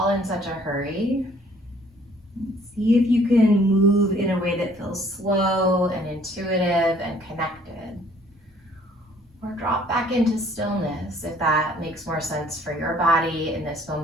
in such a hurry. See if you can move in a way that feels slow and intuitive and connected. Or drop back into stillness if that makes more sense for your body in this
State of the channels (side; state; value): both; normal; correlation 0.59